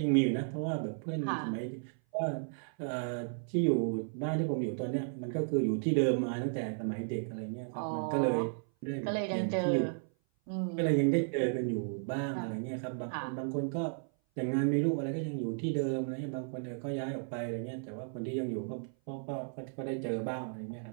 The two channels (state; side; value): silent; left; 55 dB below the other